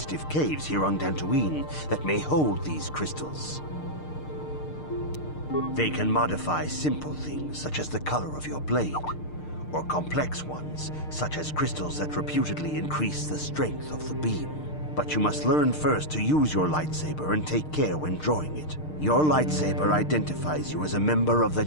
caves here on Dantooine that may hold these crystals. They can modify simple things such as the color of your blade, or complex ones such as crystals that reputedly increase the strength of the beam. But you must learn first to use your lightsaber and take care when drawing it. Your lightsaber identifies you as a member of the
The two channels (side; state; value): right; late; 6.6 ms